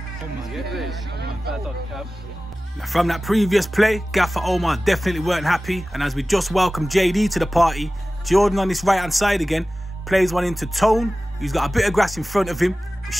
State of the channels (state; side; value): normal; both; correlation 0.96